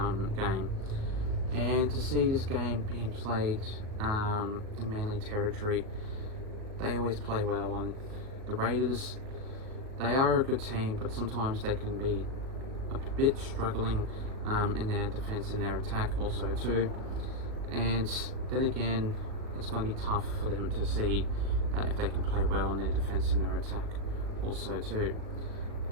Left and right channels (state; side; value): late; left; 38 ms